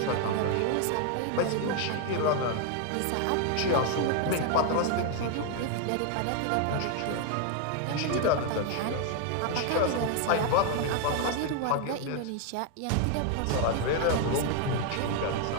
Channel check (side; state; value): both; different; correlation 0.01